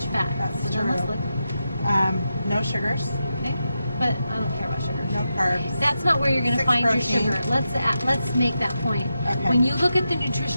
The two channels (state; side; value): inverted; both; correlation -0.88